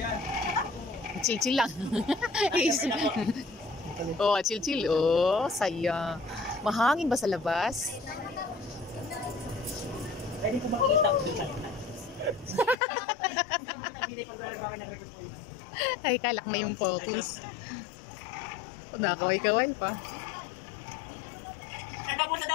Chill-chill lang. Oh, chill-chill. Oh, saya. Mahangin ba sa labas? Pwede po makikita ko dito. Ay, kalak na yung focus. Nakaway-kaway pa. Sir, nabunod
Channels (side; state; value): right; drops out; at 12.8 s